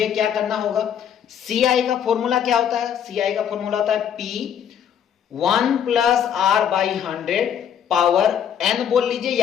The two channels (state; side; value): quieter; right; 8.8 dB